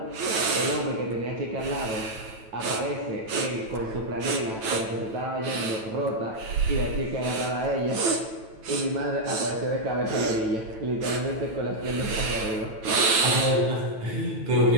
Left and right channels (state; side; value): late; left; 9.1 ms